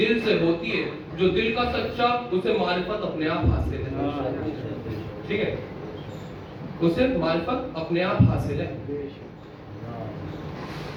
سے ہوتی ہے, جو دل کا سچا اسے معرفت اپنے آپ حاصل ہے. ٹھیک ہے, اسے معرفت اپنے آپ حاصل ہے.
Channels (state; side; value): identical; both; correlation 1.00